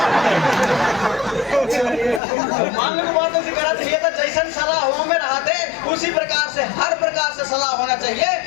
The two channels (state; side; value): drops out; right; at 2.2 s